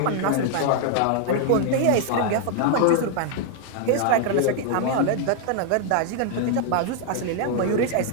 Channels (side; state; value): both; different; correlation 0.00